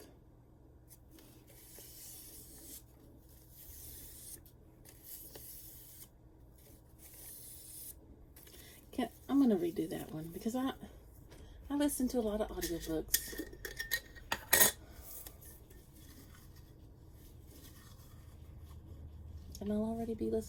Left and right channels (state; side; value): identical; both; correlation 1.00